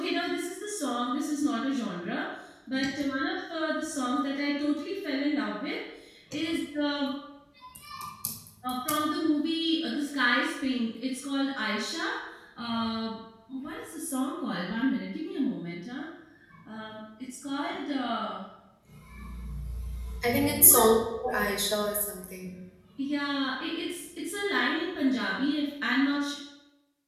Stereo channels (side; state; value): both; identical; correlation 1.00